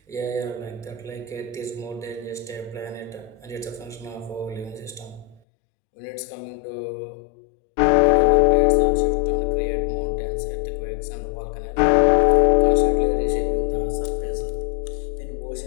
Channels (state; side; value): drops out; right; at 5.4 s